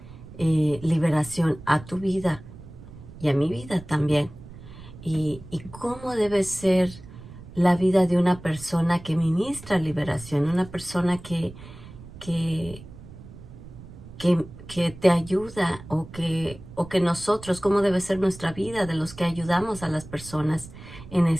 liberación a tu vida y a mi vida también. Y cómo debe ser la vida de una persona que ministra liberación, una persona que, que te ayuda, o que nosotros, cómo debe ser nuestra vida de los que ayudamos a las personas en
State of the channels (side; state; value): right; noise; rumble, 16 dB below the sound